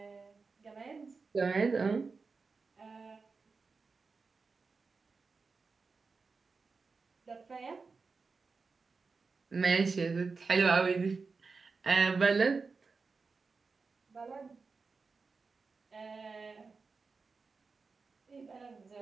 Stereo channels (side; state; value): left; quieter; 4.5 dB